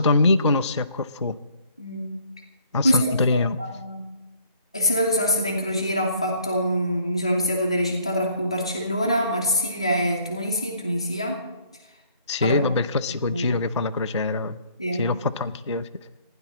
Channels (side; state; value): both; inverted; correlation -0.62